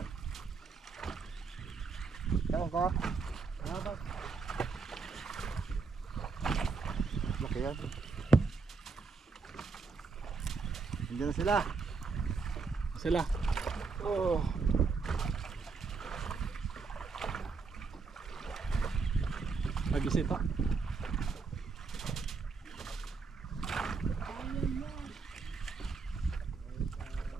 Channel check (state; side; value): quieter; left; 4.8 dB